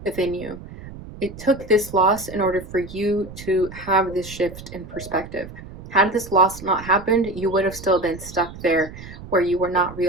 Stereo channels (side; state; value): right; noise; rumble, 14 dB below the sound